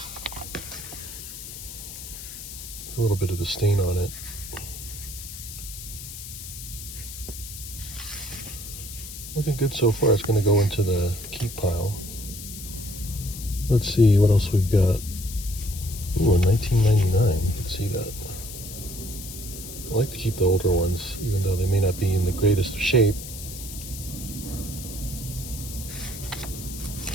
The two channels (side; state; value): left; noise; hiss, 11 dB below the sound